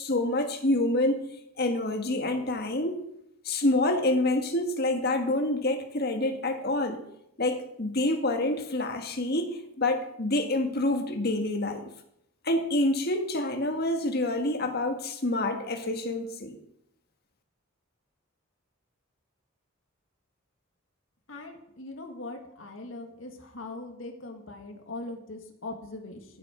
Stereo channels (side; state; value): both; normal; correlation 0.23